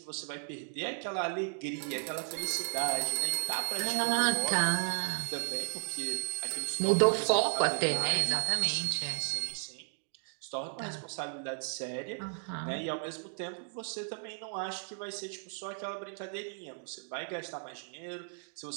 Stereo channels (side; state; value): left; silent; digital silence